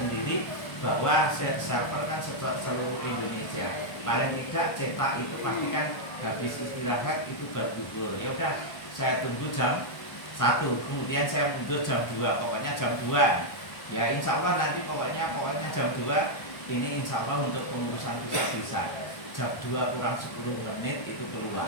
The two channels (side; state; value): right; late; 1.3 ms